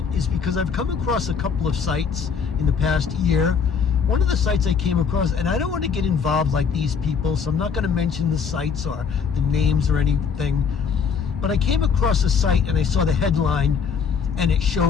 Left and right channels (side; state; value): right; quieter; 6.3 dB